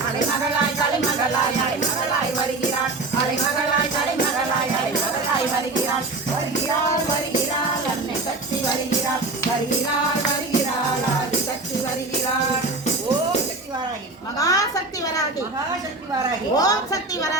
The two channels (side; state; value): left; quieter; 3.3 dB